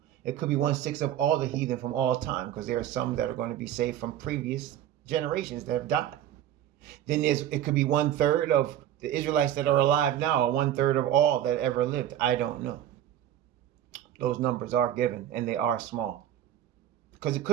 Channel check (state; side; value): quieter; left; 11.4 dB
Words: It could be 1/6 of all the heathen from all time, because there are some that are going to be saved from previous generations that have died. Then it could be 1/3 of the Israelites that are alive now, or 1/3 of all that ever lived. I don't know. Those numbers are given, and they are small. Because it